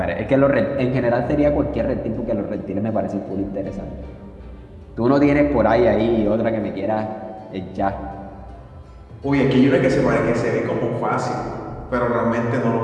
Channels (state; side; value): identical; both; correlation 1.00